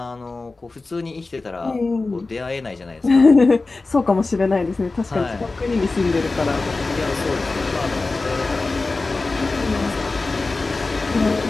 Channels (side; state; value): right; quieter; 3.5 dB